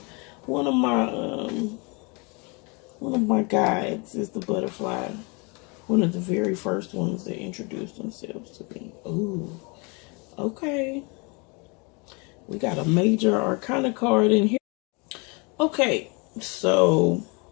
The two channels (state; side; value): quieter; right; 30.5 dB